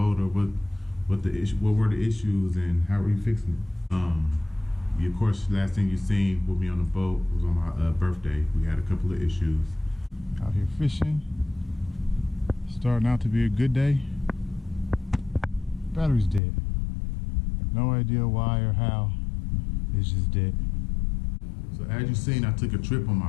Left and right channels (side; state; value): right; drops out; at 16.4 s